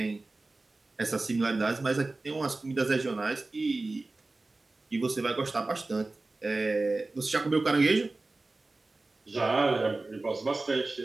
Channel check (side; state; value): left; quieter; 3.2 dB